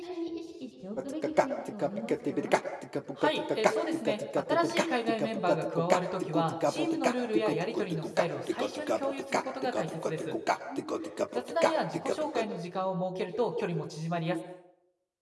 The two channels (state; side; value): identical; both; correlation 1.00